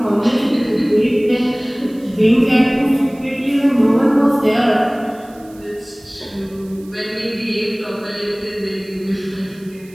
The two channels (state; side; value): noise; right; hiss, 27 dB below the sound